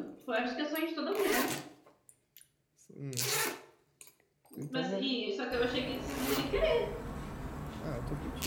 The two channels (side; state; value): both; identical; correlation 1.00